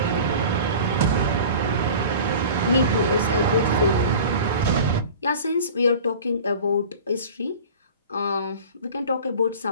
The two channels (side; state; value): both; inverted; correlation -0.39